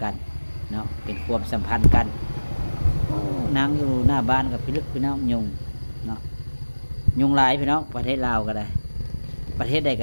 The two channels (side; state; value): both; inverted; correlation -1.00